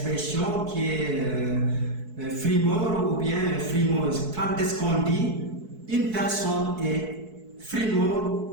qui est frimeur ou bien frimeuse. Quand est-ce qu'on dit une personne est frimeur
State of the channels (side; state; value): left; late; 4.6 ms